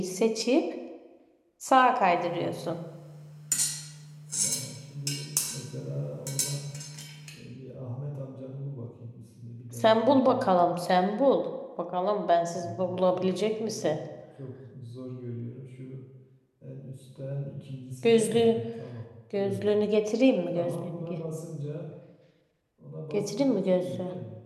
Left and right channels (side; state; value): both; identical; correlation 1.00